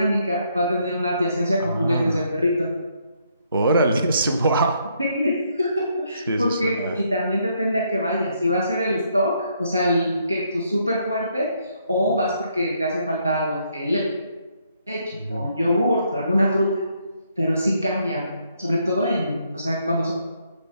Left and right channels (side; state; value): both; inverted; correlation -0.72